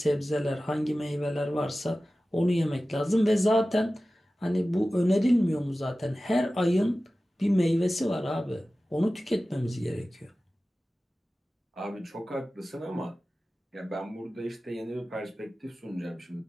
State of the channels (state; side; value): normal; both; correlation 0.96